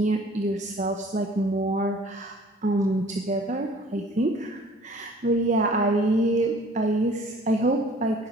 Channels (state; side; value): normal; both; correlation 0.51